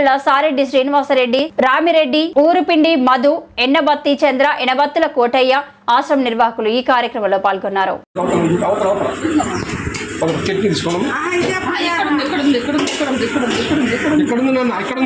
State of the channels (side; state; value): both; identical; correlation 1.00